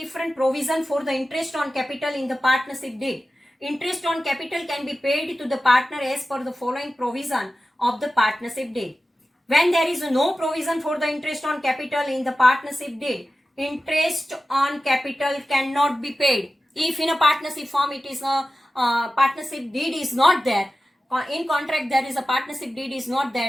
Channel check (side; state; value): both; normal; correlation 0.94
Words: provision for the interest on capital in the partnership deed. Interest on capital can be paid to the partner as per the following provision of the partnership deed. When there is no provision for the interest on capital in the partnership deed, interest on capital cannot be paid. If in a partnership firm it is a partnership deed is not there, in contract there is a partnership deed is not